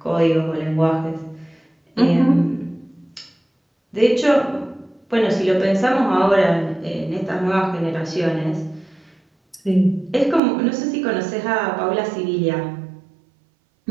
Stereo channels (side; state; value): left; drops out; at 10.4 s